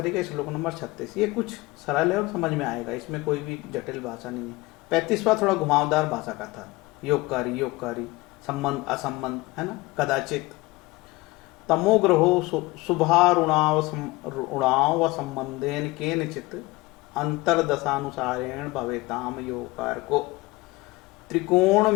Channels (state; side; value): quieter; right; 21.8 dB